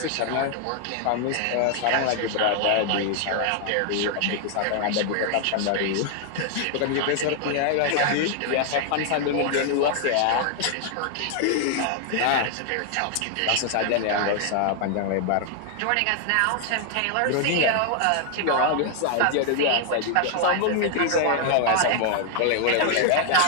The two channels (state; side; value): different; both; correlation 0.00